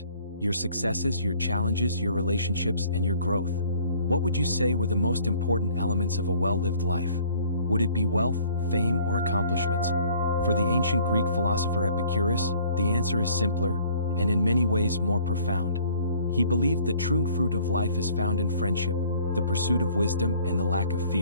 Your successes, your challenges, your relationships, and your growth. What would you say were the most important elements of a well-lived life? Would it be wealth, fame, or accomplishments? For the ancient Greek philosopher Epicurus, the answer is simpler, and in many ways more profound. He believed the true fruit of life is found in friendship, the pursuit of wisdom, and the lack of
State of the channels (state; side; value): inverted; both; correlation -0.55